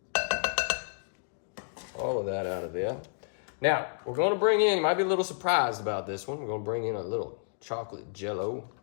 All of that out of there. Now, we're gonna bring in, you might be a little surprised about this one, we're gonna bring in a little chocolate jello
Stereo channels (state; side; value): silent; right; digital silence